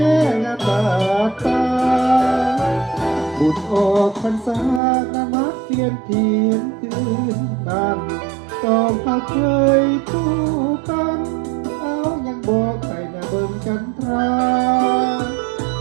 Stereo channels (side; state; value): left; drops out; at 4.8 s